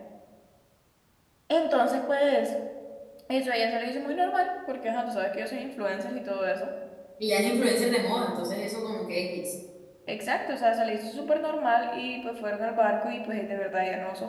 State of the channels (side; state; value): both; identical; correlation 1.00